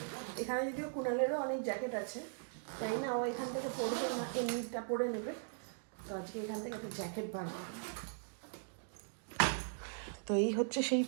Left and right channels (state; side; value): silent; left; digital silence